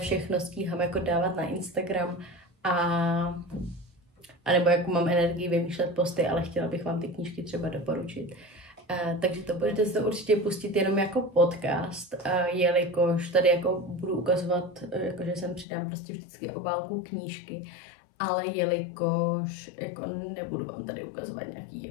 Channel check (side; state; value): right; drops out; at 15.7 s